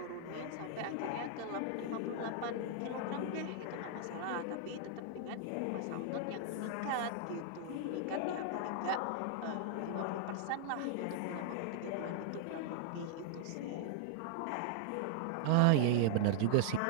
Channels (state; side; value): different; both; correlation -0.01